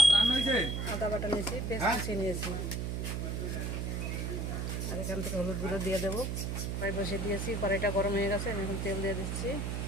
আদা বাটা নিয়েছি, পেঁয়াজ কুচিয়ে নিয়েছি। আর এখান থেকে হলুদ গুঁড়ো দিয়ে দেবো। কড়াই বসিয়ে দিয়েছি, কড়াইটা গরম হয়ে গেছে। আমি এখন তেল দিয়ে দিচ্ছি।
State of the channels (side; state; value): right; noise; hum, 2 dB below the sound